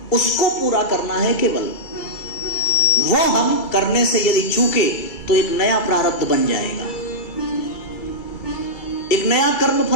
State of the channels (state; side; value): late; right; 2.2 ms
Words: उसको पूरा करना है केवल। वो हम करने से यदि चूके तो एक नया प्रारब्ध बन जाएगा, एक नया कर्म